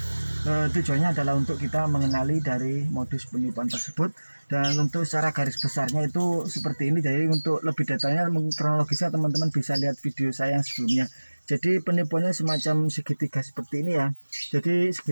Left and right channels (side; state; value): both; inverted; correlation -1.00